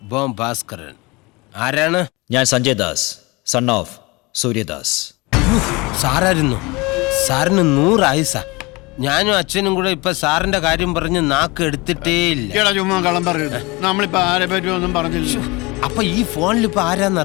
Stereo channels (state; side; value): quieter; right; 24.8 dB